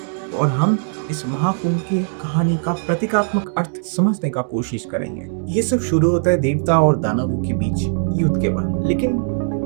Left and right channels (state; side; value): silent; left; digital silence